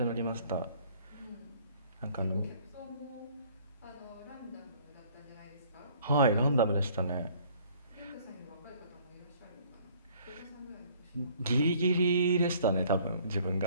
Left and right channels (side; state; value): both; inverted; correlation -0.57